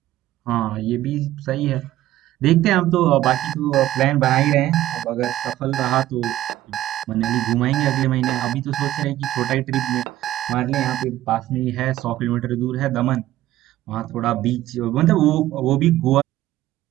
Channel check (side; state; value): left; quieter; 14.4 dB